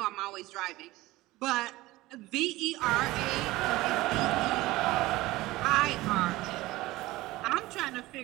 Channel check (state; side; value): quieter; left; 18.6 dB